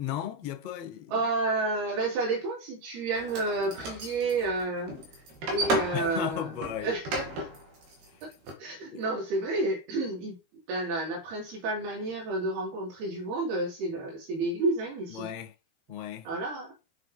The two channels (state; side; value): late; left; 13 ms